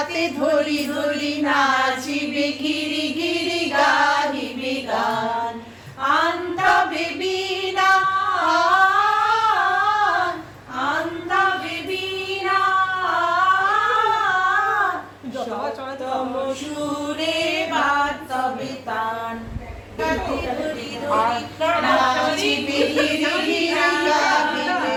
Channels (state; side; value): identical; both; correlation 1.00